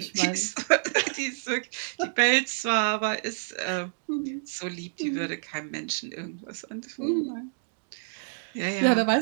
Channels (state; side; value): silent; left; 59 dB below the other